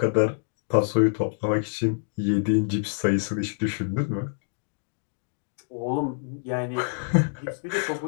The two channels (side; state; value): right; silent; digital silence